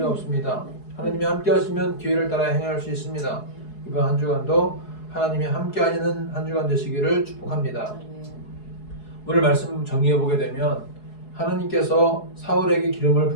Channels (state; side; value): late; right; 4.7 ms